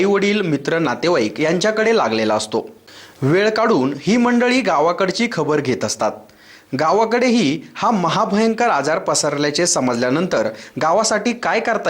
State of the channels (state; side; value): identical; both; correlation 1.00